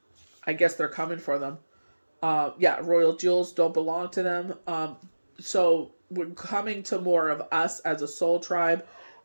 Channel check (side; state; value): both; inverted; correlation -1.00